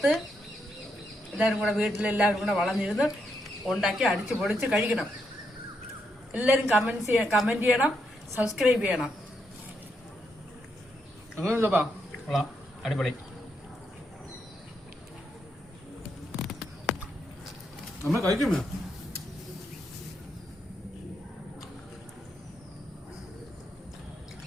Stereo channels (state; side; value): normal; both; correlation 0.80